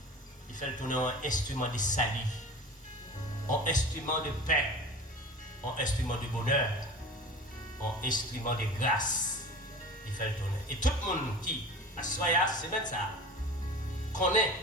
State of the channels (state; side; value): normal; both; correlation 0.37